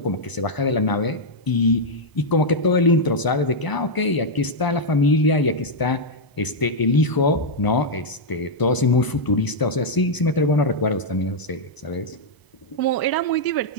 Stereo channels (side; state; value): right; late; 1.0 ms